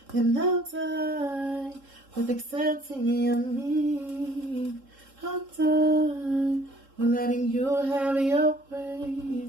And I'm tired with accepting of me. I'm done with letting you have your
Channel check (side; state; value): left; late; 3.7 ms